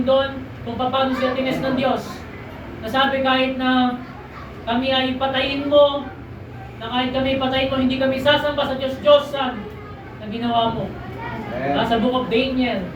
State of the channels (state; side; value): identical; both; correlation 1.00